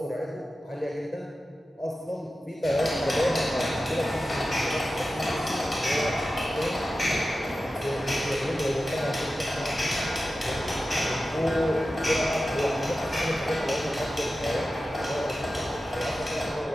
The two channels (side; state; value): both; normal; correlation 0.93